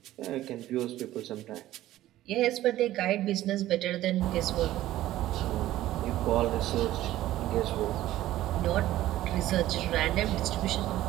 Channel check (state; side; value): quieter; left; 14.6 dB